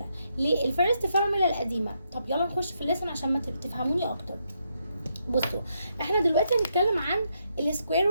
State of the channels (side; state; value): both; inverted; correlation -0.79